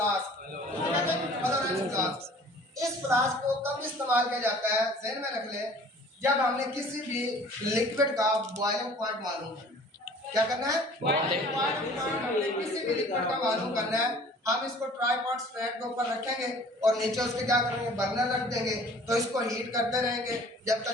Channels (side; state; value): both; normal; correlation 0.50